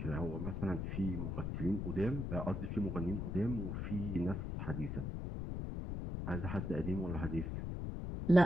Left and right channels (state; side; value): noise; left; rumble, 3 dB below the sound